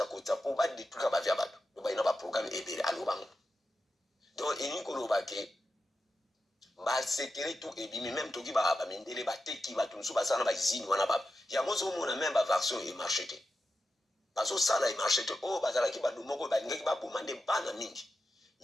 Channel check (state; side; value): normal; both; correlation 0.90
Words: po ba détruire ba via bato ba ina ba programme ebele alobango donc eniko lo ba ke ba secret tout et bimi même toki ba mindele ba teki ba tunsu ba sana ba izini wana ba ya mozo mona même ba version et marché te bazo sala et marché te oh bazala ki ba lumoko ba ngeki ba bomande bana mingi